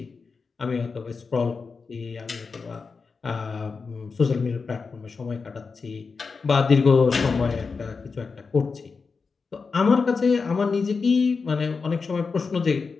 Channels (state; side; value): quieter; right; 4.8 dB